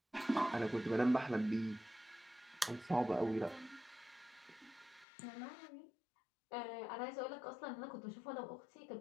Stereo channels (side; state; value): right; drops out; at 5.1 s